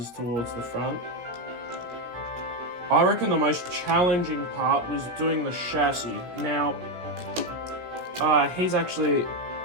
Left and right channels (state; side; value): late; left; 17 ms